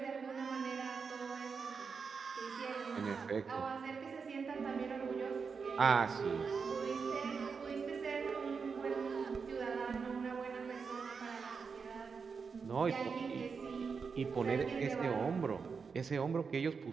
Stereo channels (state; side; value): quieter; left; 5.5 dB